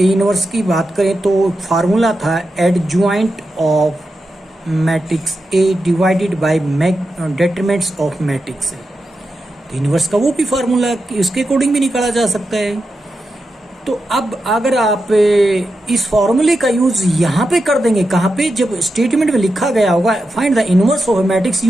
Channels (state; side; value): normal; both; correlation 0.89